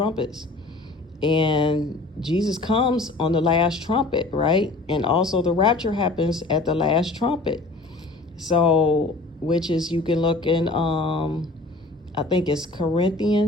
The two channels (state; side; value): quieter; right; 3.1 dB